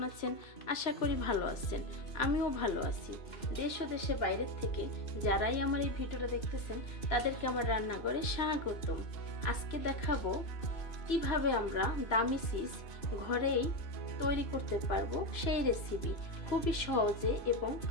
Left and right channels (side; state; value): right; late; 3.0 ms